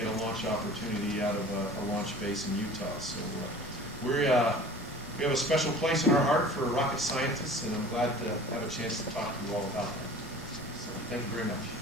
a launch opportunity out of a launch base in Utah. So we have a special place in our heart for rocket scientists, and I'm glad to have a chance to talk to you all about that. So thank you very much.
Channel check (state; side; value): noise; right; rumble, 18 dB below the sound